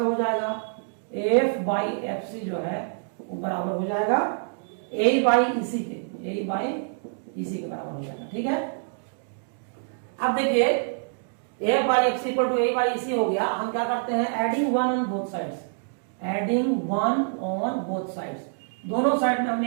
हो जाएगा एफ बाई एफ सी जो है वो बराबर हो जाएगा ए बाई इसी के, ए बाई इसी के बराबर हो जाएगा, ठीक है। अब देखिए A by X equal to A by EC हो गया। हम क्या करते हैं, एडिंग 1 ऑन बोथ साइड्स, दोनों साइड में हम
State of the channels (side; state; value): left; silent; digital silence